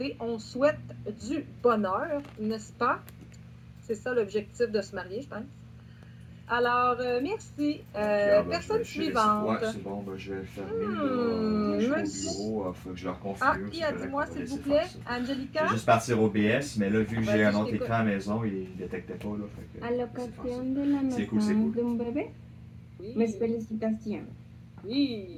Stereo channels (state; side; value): identical; both; correlation 1.00